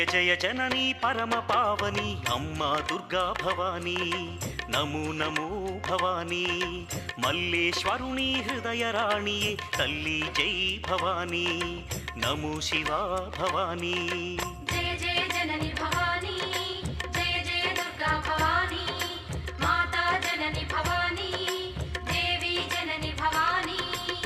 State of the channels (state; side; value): identical; both; correlation 1.00